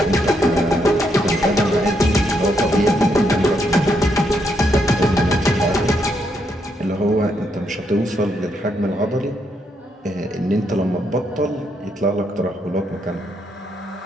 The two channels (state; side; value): normal; both; correlation 0.77